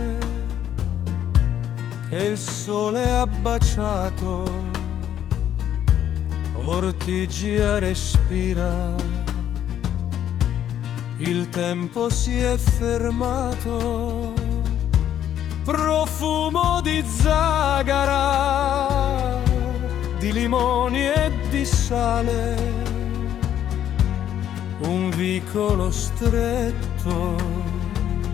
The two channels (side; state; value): right; quieter; 10.5 dB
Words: che il sole ha baciato, Ortigia respira, il tempo si è fermato, profumo di zagara, di limoni e di sale, un vicolo stretto,